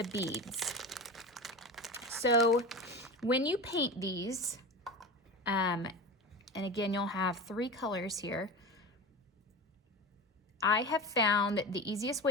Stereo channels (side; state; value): both; normal; correlation 0.28